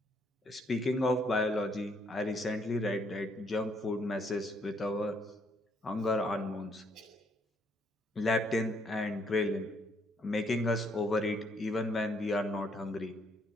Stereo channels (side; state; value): both; normal; correlation 0.70